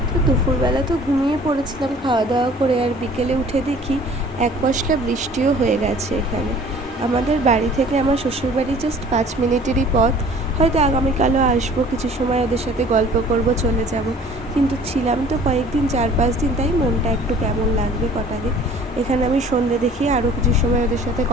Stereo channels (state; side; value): normal; both; correlation 0.50